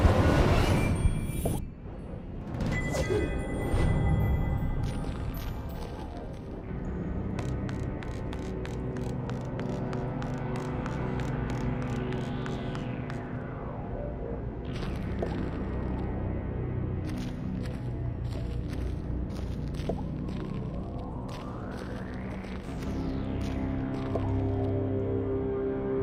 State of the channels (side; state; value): both; identical; correlation 1.00